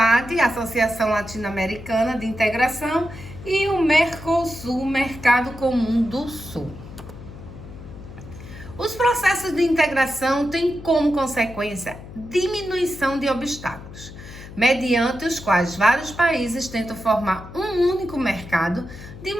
Associação Latino-Americana de Integração, e o Mercosul, Mercado Comum do Sul. Os processos de integração têm como consequência diminuição de obstáculos, mediante os quais vários países tentam formar um único mercado de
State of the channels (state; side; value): noise; left; hum, 15 dB below the sound